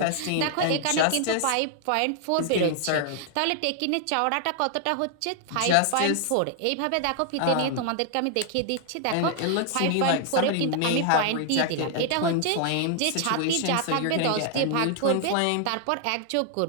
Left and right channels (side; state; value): both; different; correlation 0.00